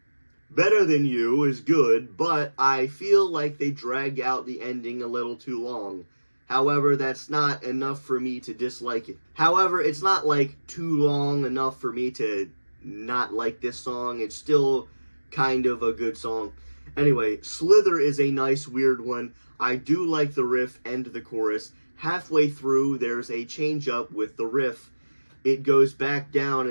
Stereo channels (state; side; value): inverted; both; correlation -1.00